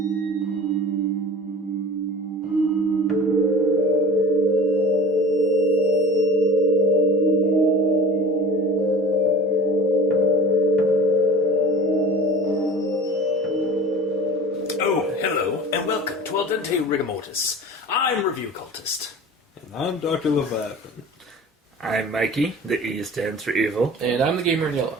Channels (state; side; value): normal; both; correlation 0.38